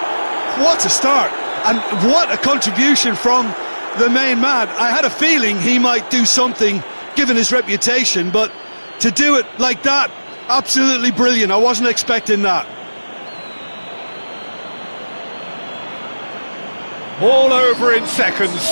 What a start, and what a contribution from the main man. I had a feeling he might do something, given his reputation, but to do it like that, absolutely brilliant. I wasn't expecting that. All over in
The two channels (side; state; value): both; inverted; correlation -1.00